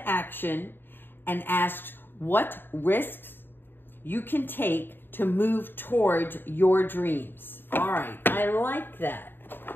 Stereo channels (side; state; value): right; late; 0.097 ms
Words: action and ask what risks you can take to move towards your dreams. All right, I like that.